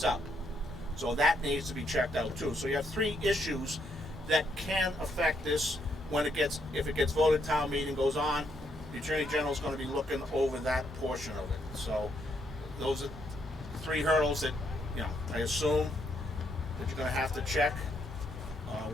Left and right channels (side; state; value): both; normal; correlation 0.75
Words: up. So that needs to be checked out too. So you have 3 issues that can affect this when it gets, if it gets voted, town meeting goes on, the Attorney General is going to be looking over that portion of it. So those are 3 hurdles that, I assume that you're going to have to check.